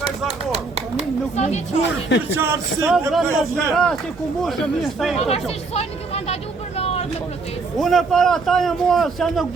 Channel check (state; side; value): quieter; left; 4.0 dB